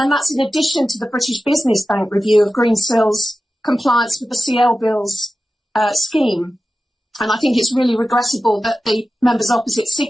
that's in addition to the British Business Bank review of Greensill's compliance with the CL Bills scheme. And I think it's really regrettable that the members opposite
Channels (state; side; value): normal; both; correlation 0.94